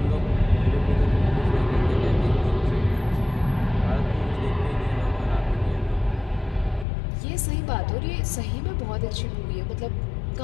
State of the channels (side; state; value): right; drops out; at 6.9 s